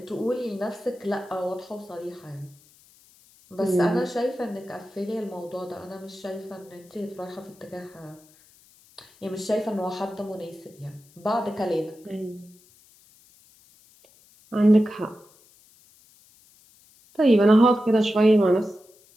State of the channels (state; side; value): noise; left; hiss, 28 dB below the sound